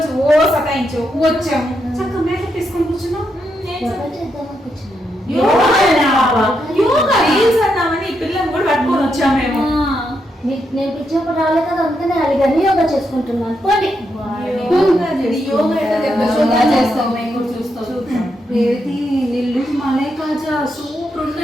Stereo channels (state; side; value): normal; both; correlation 0.81